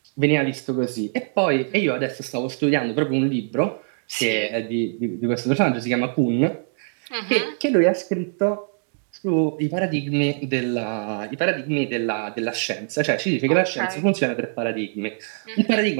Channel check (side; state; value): left; silent; digital silence